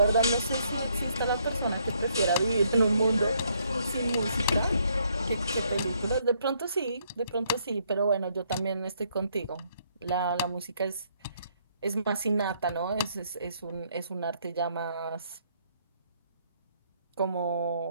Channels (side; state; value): both; inverted; correlation -0.70